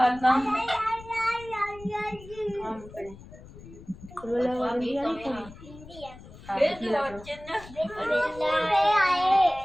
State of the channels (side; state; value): left; noise; rumble, 18 dB below the sound